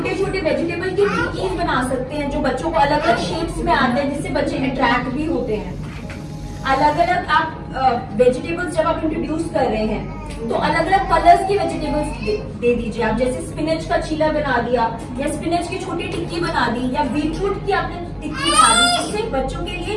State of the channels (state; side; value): identical; both; correlation 1.00